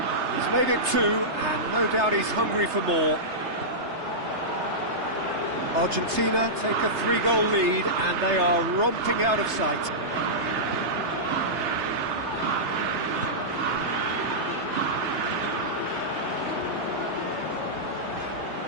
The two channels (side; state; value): left; late; 3.3 ms